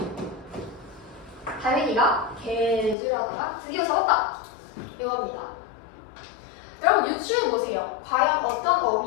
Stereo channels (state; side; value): drops out; right; at 3.0 s